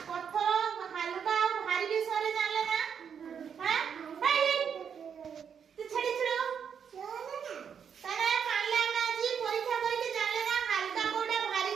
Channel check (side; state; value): left; quieter; 7.4 dB